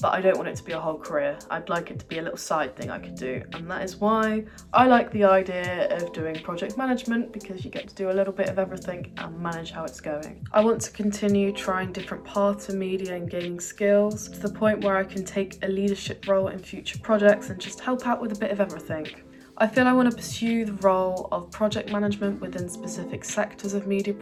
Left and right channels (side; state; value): both; identical; correlation 1.00